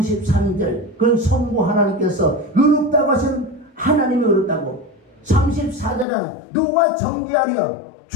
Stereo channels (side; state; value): right; drops out; at 6.1 s